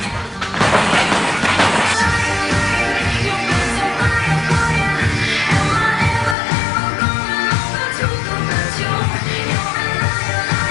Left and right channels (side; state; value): right; drops out; at 6.4 s